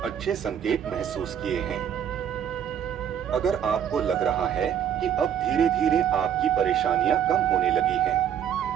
अच्छे संकेत महसूस किए हैं, अगर आपको लग रहा है कि अब धीरे धीरे आपकी परेशानियां कम होने लगी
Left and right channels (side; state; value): left; quieter; 9.2 dB